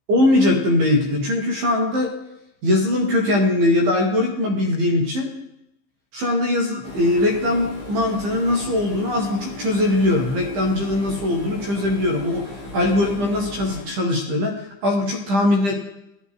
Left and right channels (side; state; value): left; late; 15 ms